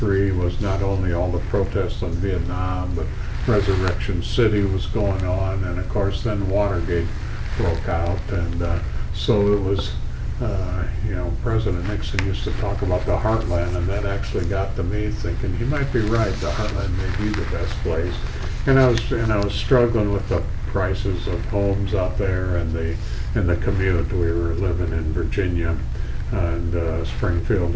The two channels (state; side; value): identical; both; correlation 1.00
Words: was not only all the protests on Vietnam, but Resurrection City was going on, and of course then Watergate broke out, and so it was, President Nixon used to talk about the heartland, and that actually got to me thinking he might be right. The heartland may be the best place, and I was struggling with the prices of homes out there and the commute. We were living in Virginia and Springfield,